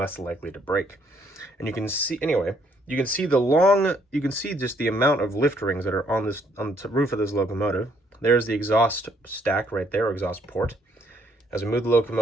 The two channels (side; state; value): both; normal; correlation 0.68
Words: likely to break. And you can see, anyway, you can see just the amount of lift rings that are on the roof of this locomotive. There's the exhaust stack right there, or exhaust port. As we move the